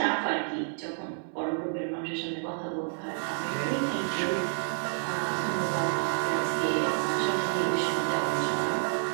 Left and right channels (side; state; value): left; silent; 58 dB below the other